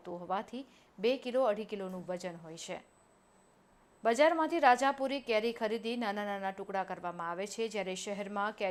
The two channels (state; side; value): identical; both; correlation 1.00